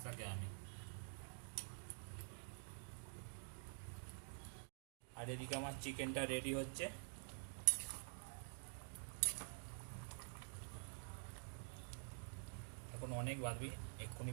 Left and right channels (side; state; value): left; silent; digital silence